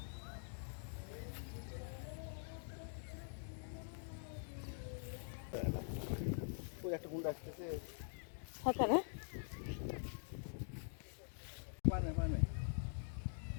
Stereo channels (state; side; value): silent; right; digital silence